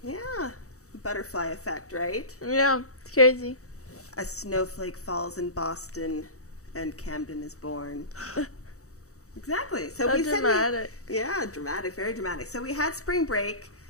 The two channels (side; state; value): right; late; 0.65 ms